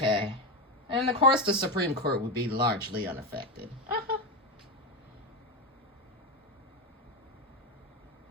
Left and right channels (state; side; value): normal; both; correlation 0.13